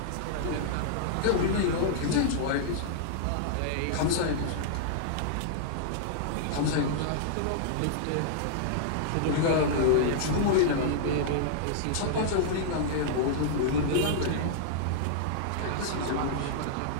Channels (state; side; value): different; both; correlation -0.02